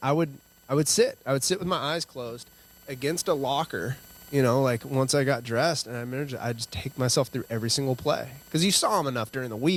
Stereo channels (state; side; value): identical; both; correlation 1.00